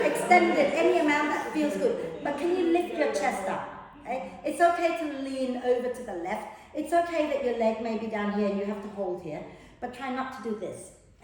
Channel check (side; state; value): both; identical; correlation 1.00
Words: it any amount that feels good. But can you lift your chest up? Okay? It's okay to lean over to the left. It's okay that your leg may be down here and you have to hold here. But try not to do this.